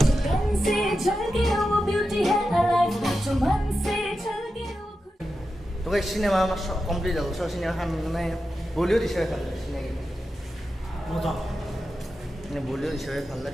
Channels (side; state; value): both; normal; correlation 0.90